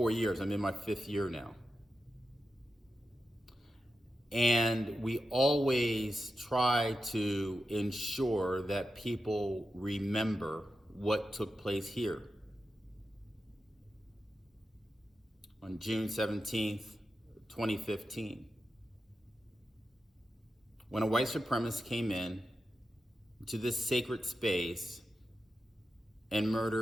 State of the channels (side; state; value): both; normal; correlation 0.90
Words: years. I'm in my 5th year now. And we always try to ensure that people remember what took place here. On June 17th, 2015, when a white supremacist came in to this sacred space and